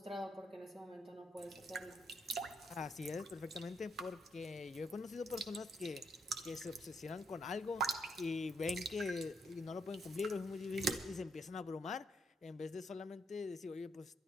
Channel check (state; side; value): normal; both; correlation 0.76